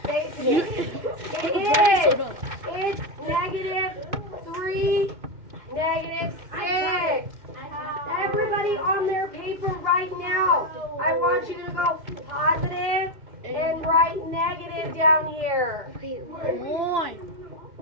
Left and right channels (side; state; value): left; late; 2.5 ms